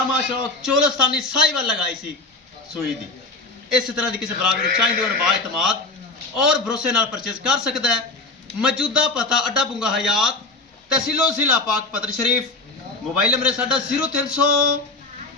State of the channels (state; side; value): quieter; right; 3.2 dB